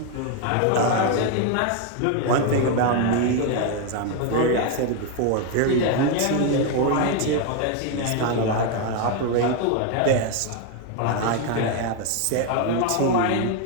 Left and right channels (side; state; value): both; different; correlation 0.01